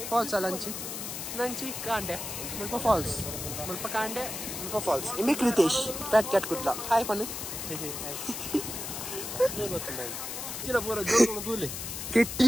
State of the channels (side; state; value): left; noise; hiss, 6 dB below the sound